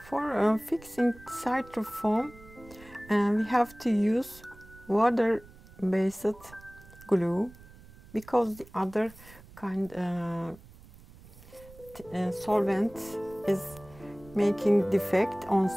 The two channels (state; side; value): noise; right; rumble, 21 dB below the sound